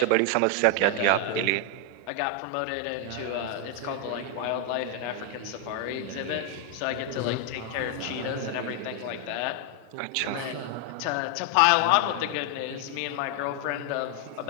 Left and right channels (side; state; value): both; different; correlation 0.00